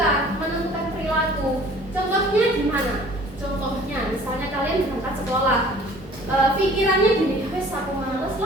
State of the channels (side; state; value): both; normal; correlation 0.50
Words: menentukan perilaku. Contohnya gimana? Contohnya misalnya kalian berangkat sekolah, pikirannya gini, wes aku males